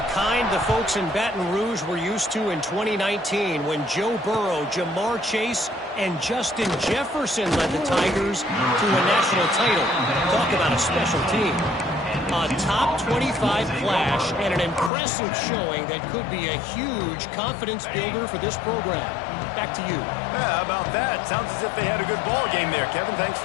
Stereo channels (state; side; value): drops out; right; at 14.9 s